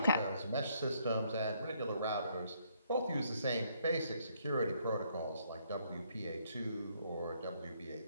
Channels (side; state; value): both; inverted; correlation -0.70